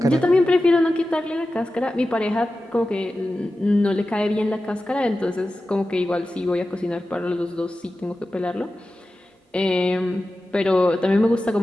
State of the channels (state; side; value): normal; both; correlation 0.94